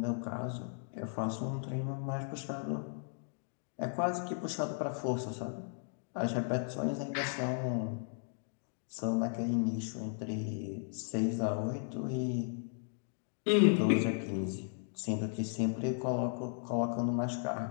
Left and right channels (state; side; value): silent; right; digital silence